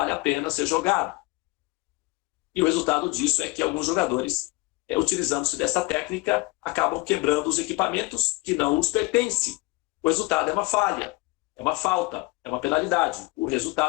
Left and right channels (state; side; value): quieter; right; 23.3 dB